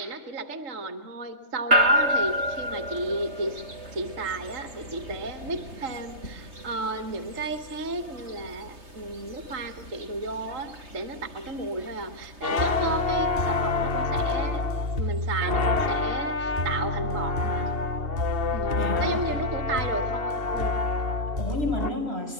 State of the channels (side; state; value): left; late; 3.3 ms